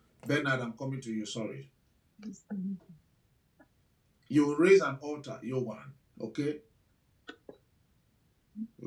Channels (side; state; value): both; identical; correlation 1.00